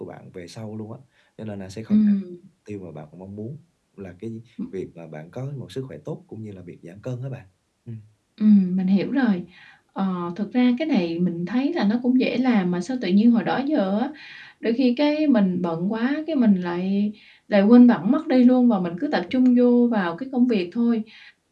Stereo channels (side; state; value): both; identical; correlation 1.00